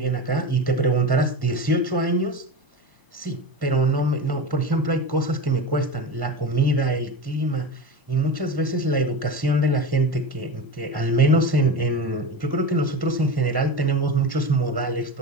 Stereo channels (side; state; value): left; late; 1.1 ms